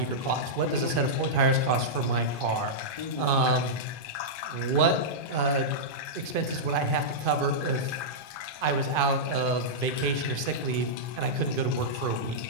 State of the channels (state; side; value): late; left; 2.5 ms